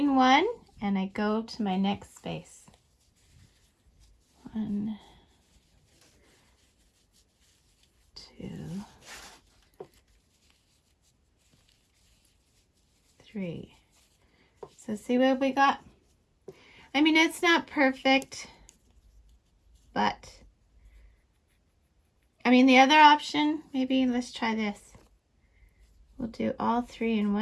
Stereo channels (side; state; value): both; identical; correlation 1.00